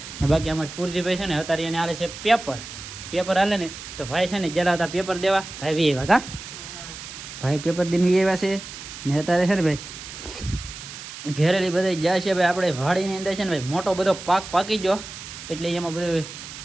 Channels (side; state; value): right; noise; hiss, 12 dB below the sound